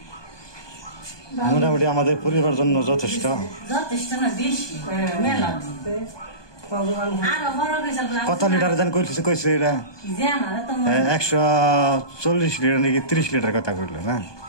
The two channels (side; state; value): right; late; 1.2 ms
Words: মোটামুটি আমাদের পরিবার জন্য যথেষ্ট। কত লিটার জান কইছে এটা? 140 লিটার নাকি 30 লিটার কথা কইল না,